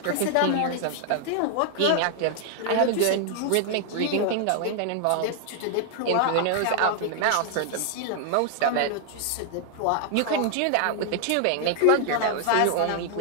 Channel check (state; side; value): different; both; correlation 0.00